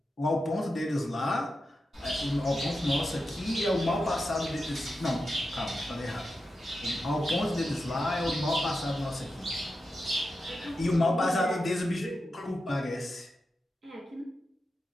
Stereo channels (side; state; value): both; normal; correlation 0.89